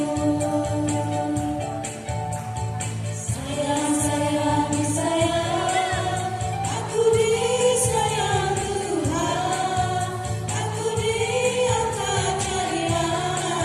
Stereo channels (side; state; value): both; identical; correlation 1.00